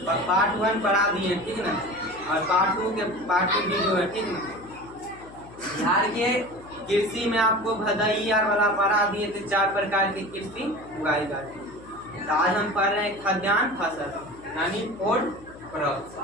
पार्ट 1 पढ़ा दिए, ठीक ना, और पार्ट 2 वीडियो है, ठीक ना। बिहार के कृषि में आपको भदई वाला पढ़ा दिए थे, 4 प्रकार की कृषि उगाई जाती है। तो आज हम पढ़ रहे हैं खाद्यान्न फसल, यानी फूड क्रॉप्स,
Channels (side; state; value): left; noise; hum, 20 dB below the sound